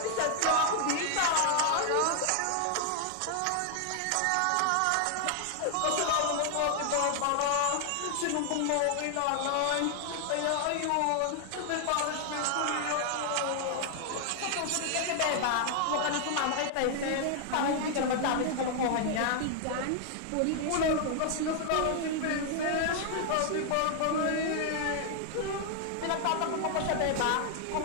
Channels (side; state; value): both; different; correlation 0.00